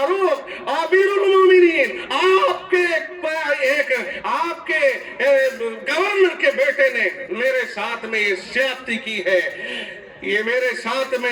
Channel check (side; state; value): both; identical; correlation 1.00